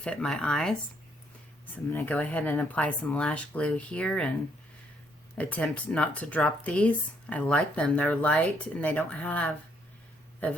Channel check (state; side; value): normal; both; correlation 0.71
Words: my eyes. So I'm going to go ahead and apply some lash glue here and attempt not to drop these. I like them. They're light and they don't have a